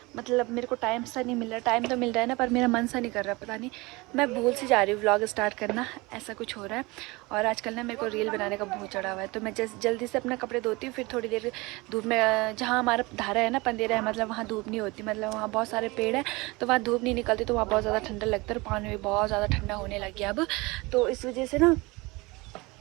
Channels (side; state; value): left; quieter; 23.9 dB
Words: मतलब मेरे को टाइम सा नहीं मिल रहा, टाइम तो मिल रहा है ना, पर मेरा मन सा नहीं कर रहा, पता नहीं मैं भूल सी जा रही हूँ व्लॉग स्टार्ट करना, ऐसा कुछ हो रहा है। और आजकल ना मेरे को रील बनाने का बहुत चढ़ा हुआ है। तो मैं जल्दी से अपना कपड़े धोती हूँ, फिर थोड़ी देर धूप में, जहाँ हमारा धारा है ना पंदेरा है, मतलब वहाँ धूप नहीं होती, मतलब वहाँ बहुत सारे पेड़ है तो वहाँ धूप नहीं निकलती, तो वहाँ बहुत ज़्यादा ठंडा लगता है और पानी भी बहुत ज़्यादा ठंडा होने लग गया अब। तो इस वजह से ना